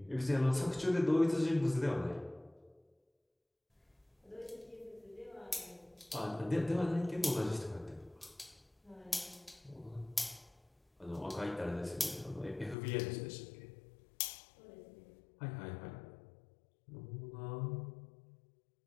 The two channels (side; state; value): right; drops out; at 12.8 s